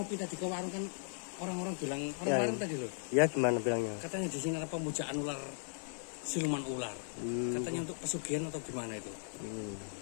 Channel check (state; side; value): silent; right; 53 dB below the other